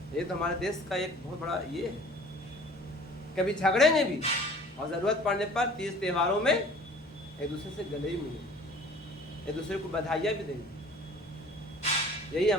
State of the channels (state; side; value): normal; both; correlation 0.48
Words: ये तो हमारे देश का एक बहुत बड़ा ये है। कभी झगड़ेंगे भी और जरूरत पड़ने पर तीज त्योहारों में एक दूसरे से गले ही मिलेंगे, एक दूसरे को बधाइयाँ भी देंगे। यही